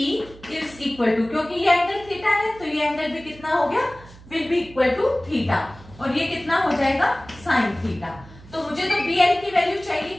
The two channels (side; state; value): right; noise; hum, 20 dB below the sound